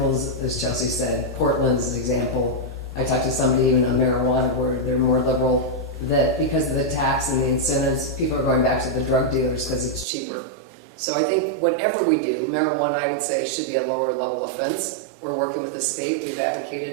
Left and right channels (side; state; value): left; drops out; at 10.1 s